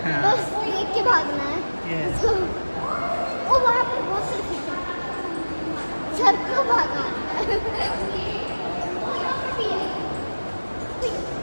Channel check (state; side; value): inverted; both; correlation -1.00